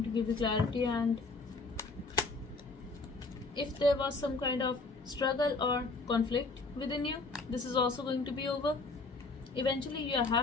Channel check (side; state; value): right; quieter; 3.7 dB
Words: to give you clarity, and if there was some kind of struggle or conflict within you, this is also going to be over. Eventually you are